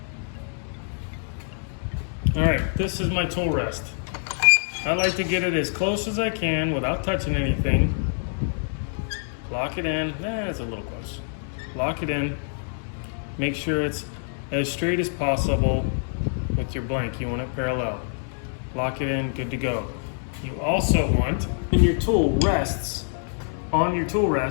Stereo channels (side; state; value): right; silent; digital silence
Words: All right, this is my tool rest. I like to get it as close as I can without touching anything. Lock it in, it's a little close. Lock it in, make sure it's as straight as possible with your blank. You want it parallel. Lock it in, good to go. You also want, when your tool rests, on your tool